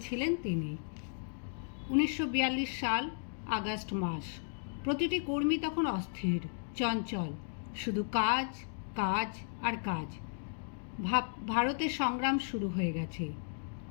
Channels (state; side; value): silent; right; digital silence